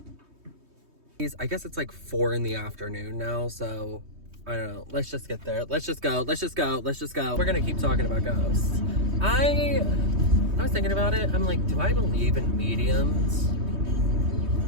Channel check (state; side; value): late; left; 3.2 ms